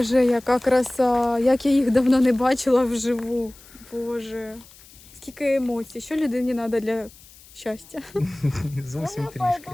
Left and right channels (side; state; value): left; noise; hiss, 23 dB below the sound